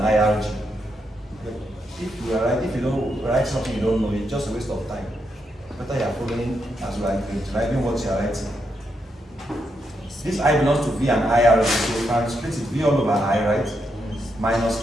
IRG. If you are right, if you don't write something you don't know, it's just a waste of time. Better you are following as you are writing what you are writing. This I belongs to V and IRG, so we can split it V all over I, right? Minus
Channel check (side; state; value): both; normal; correlation 0.81